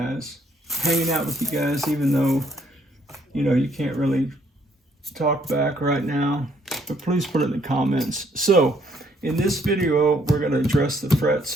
Hanging out with you guys, even though, you know, you can't really talk back right now, but please put it in the comments. So in this video, we're going to address the frets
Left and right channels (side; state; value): both; normal; correlation 0.67